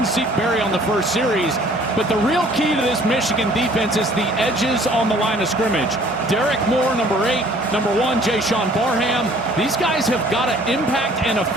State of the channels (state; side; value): normal; both; correlation 0.55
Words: Zeke Berry on the first series? But the real key to this Michigan defense is the edges on the line of scrimmage. Derek Moore, number 8, number 1, Jay-Sean Barham. These guys have got to impact and